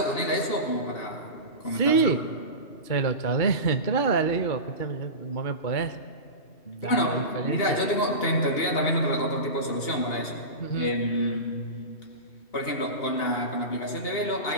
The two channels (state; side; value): late; right; 2.8 ms